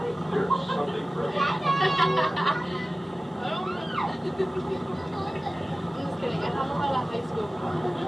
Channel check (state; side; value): normal; both; correlation 0.97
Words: there's something for everyone. I'm just kidding. I have a lot of high school friends.